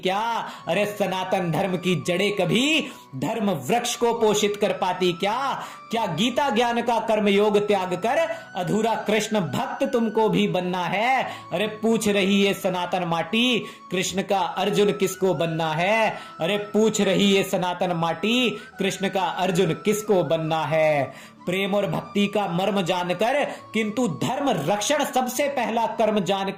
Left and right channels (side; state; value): both; identical; correlation 1.00